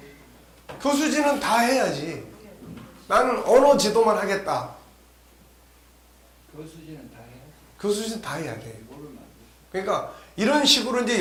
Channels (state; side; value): identical; both; correlation 1.00